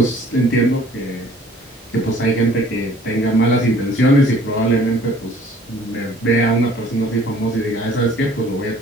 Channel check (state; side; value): normal; both; correlation 0.54